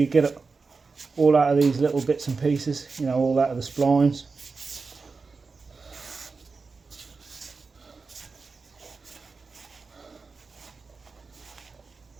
get it all out of these little bits and pieces, you know, all out of the splines.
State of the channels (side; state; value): left; quieter; 4.4 dB